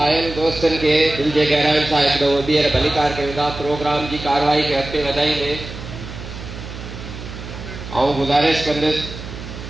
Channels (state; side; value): noise; right; hum, 11 dB below the sound